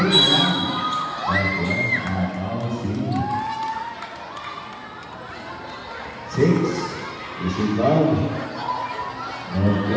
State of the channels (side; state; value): both; identical; correlation 1.00